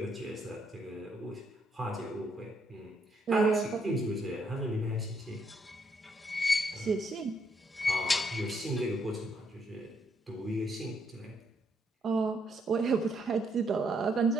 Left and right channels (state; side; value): normal; both; correlation 0.74